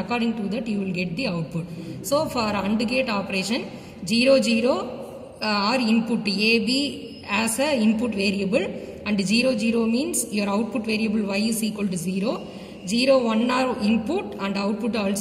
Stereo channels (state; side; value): identical; both; correlation 1.00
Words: to that you will get the output. So for AND gate operation, 0, 0 are input A, B as a input variable, and 0, 0 means your output variable Y is equal to 0. 0, 1 are input and output